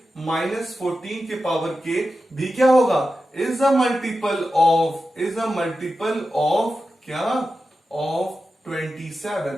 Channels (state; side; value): normal; both; correlation 0.91